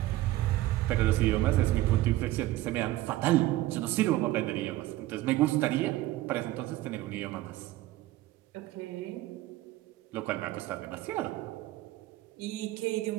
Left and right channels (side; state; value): left; quieter; 16.3 dB